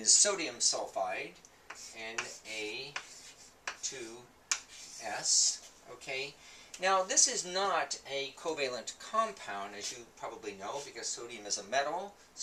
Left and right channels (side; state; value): both; identical; correlation 1.00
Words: sodium sulfide, Na2S. Okay. Now this is not a covalent compound, as you probably know, because sodium is a metal,